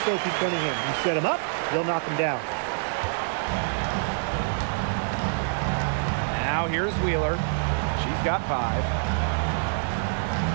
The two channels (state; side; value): silent; left; digital silence